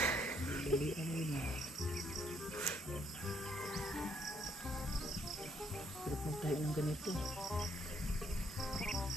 Dili ano yun ah. Sarap magtayo ng ganito.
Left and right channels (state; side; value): normal; both; correlation 0.70